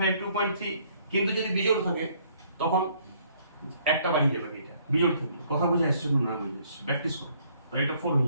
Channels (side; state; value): both; inverted; correlation -0.64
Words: কিন্তু যদি বিজোড় থাকে তখন একটা বাড়িয়ে যাবে, এটা বিজোড় থাকে, কথা বুঝে আসছে না? বুঝে আসছে, প্র্যাকটিস করো, তাহলে এটা 4 হয়ে